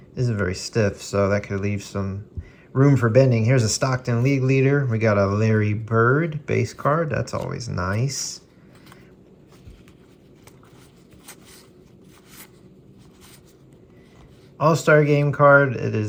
isn't very stiff, so that could leave some room for bending. Here's a Stockton League Leader. We got a Larry Bird base card. That's always nice. All-Star Game card. It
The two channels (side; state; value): both; identical; correlation 1.00